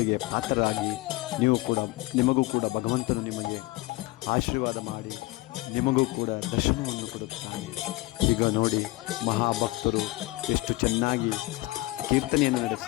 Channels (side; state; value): right; quieter; 20.7 dB